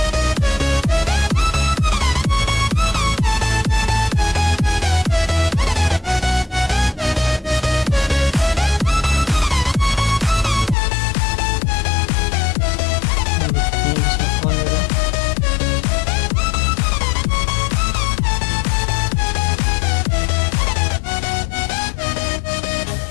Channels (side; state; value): right; drops out; at 10.8 s